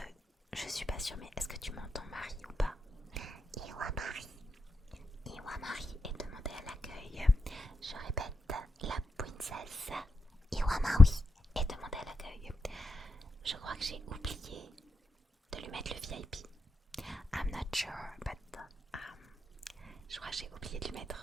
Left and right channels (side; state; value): both; normal; correlation 0.87